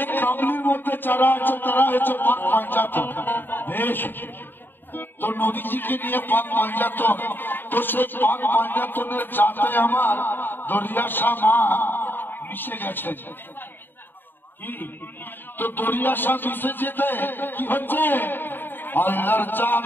কম্বলের মধ্যে যারা আছে তারা হচ্ছে পাক পঞ্চায়েত বেশ তো নবীজিকে নিয়ে পাক পঞ্চায়েত তো সেই পাক পঞ্চায়েতের যাতে আমার দরিয়া শাহ মা মিশে গেছে কি তো দরিয়া শাহ মিশে যেতে কি হচ্ছে আল্লাহর জাত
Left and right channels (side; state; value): right; late; 0.095 ms